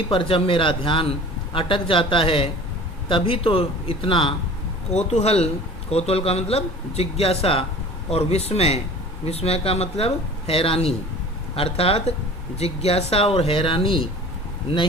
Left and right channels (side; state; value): both; normal; correlation 0.42